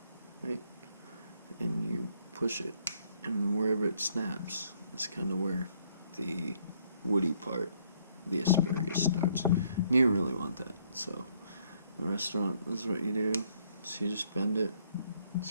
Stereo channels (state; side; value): inverted; both; correlation -0.67